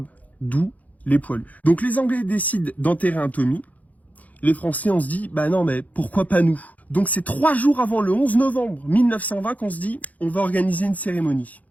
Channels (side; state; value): right; late; 0.075 ms